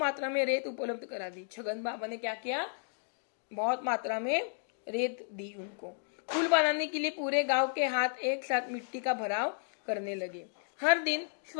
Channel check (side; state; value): right; silent; digital silence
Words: में रेत उपलब्ध करा दी। छगन बाबा ने क्या किया, बहुत मात्रा में रेत दी उनको। पुल बनाने के लिए पूरे गांव के हाथ एक साथ मिट्टी का भराव करने लगे। हर दिन